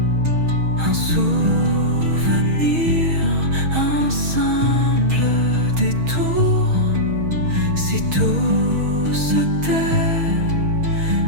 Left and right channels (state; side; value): late; left; 6.3 ms